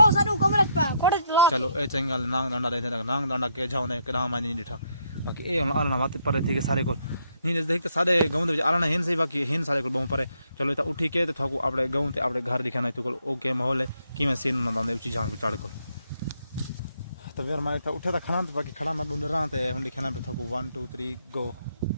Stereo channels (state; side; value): inverted; both; correlation -0.73